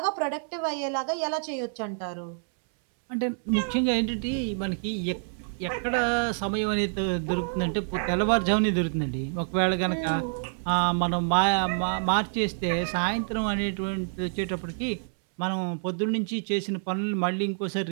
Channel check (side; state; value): left; silent; 60 dB below the other